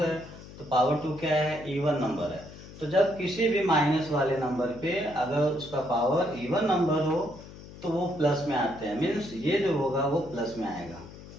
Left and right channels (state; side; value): noise; left; hum, 16 dB below the sound